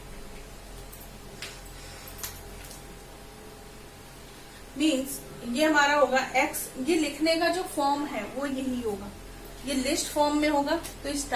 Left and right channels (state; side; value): identical; both; correlation 1.00